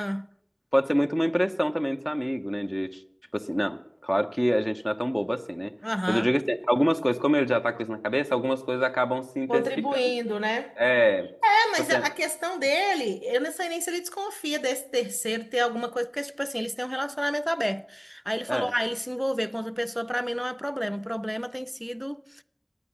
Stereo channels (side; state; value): both; identical; correlation 1.00